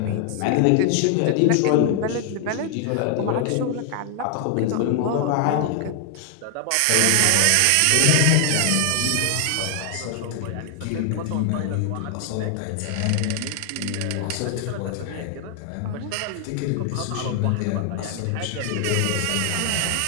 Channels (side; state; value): both; different; correlation 0.00